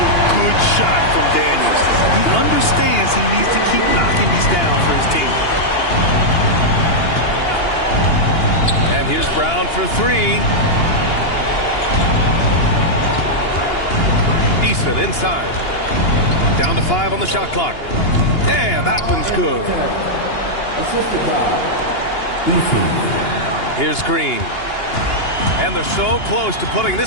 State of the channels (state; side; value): late; right; 2.8 ms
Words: good shot from Daniels. He understands he needs to keep knocking these down for his team. And here's Brown for 3. Eason inside. Down to 5 on the shot clock. And that one's good. Here's Green. And they're so close to putting